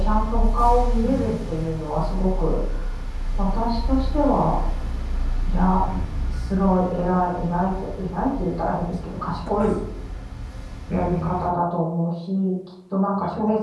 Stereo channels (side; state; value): both; identical; correlation 1.00